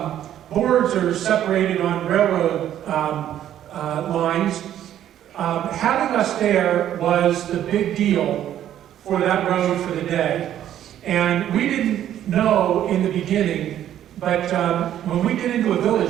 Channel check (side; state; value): left; quieter; 11.2 dB